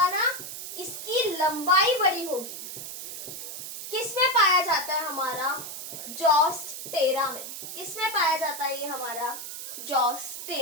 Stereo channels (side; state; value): right; noise; hiss, 8 dB below the sound